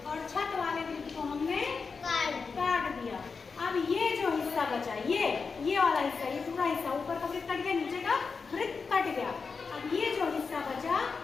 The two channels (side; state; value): right; quieter; 5.0 dB